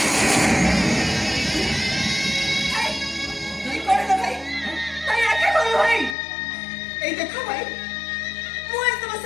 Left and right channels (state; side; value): drops out; right; at 6.2 s